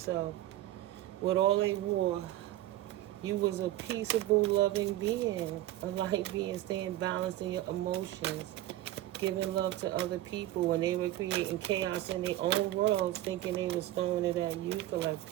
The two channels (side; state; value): left; quieter; 15.2 dB